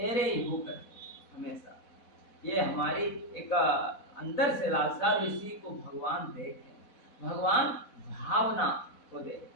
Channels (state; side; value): late; right; 4.1 ms